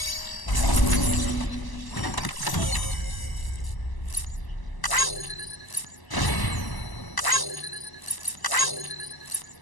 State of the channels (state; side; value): late; right; 1.0 ms